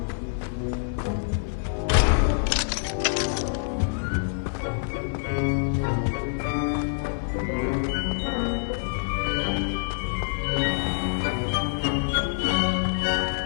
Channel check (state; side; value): silent; right; 56 dB below the other